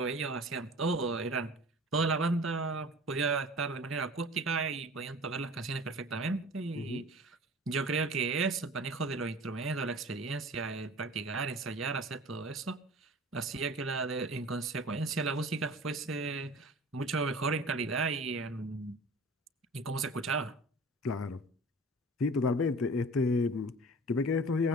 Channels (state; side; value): normal; both; correlation 0.41